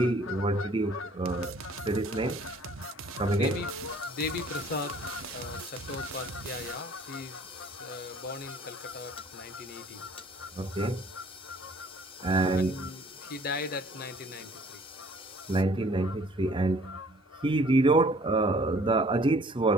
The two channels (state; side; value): normal; both; correlation 0.55